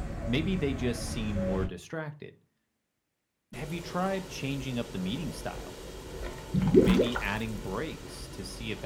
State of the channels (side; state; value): both; identical; correlation 1.00